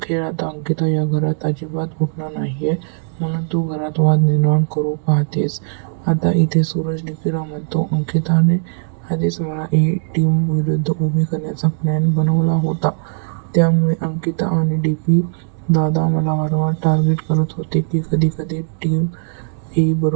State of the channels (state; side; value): silent; left; digital silence